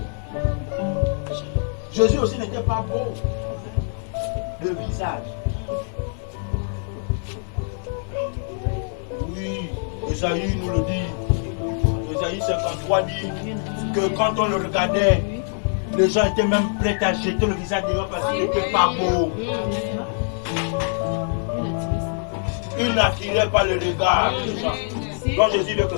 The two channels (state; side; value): silent; right; 63 dB below the other